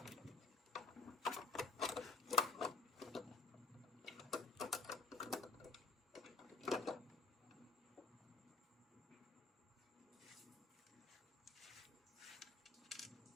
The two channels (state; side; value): quieter; right; 4.2 dB